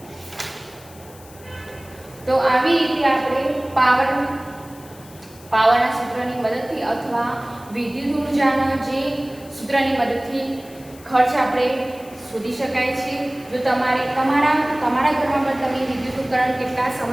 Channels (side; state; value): left; noise; hiss, 22 dB below the sound